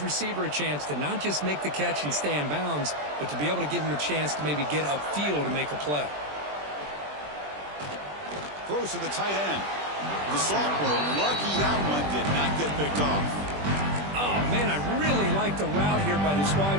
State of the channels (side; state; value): left; late; 20 ms